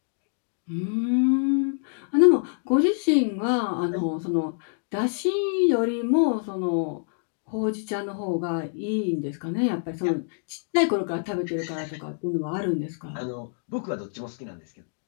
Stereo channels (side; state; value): right; silent; digital silence